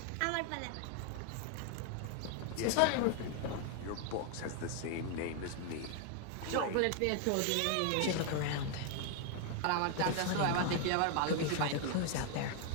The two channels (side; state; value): both; different; correlation 0.00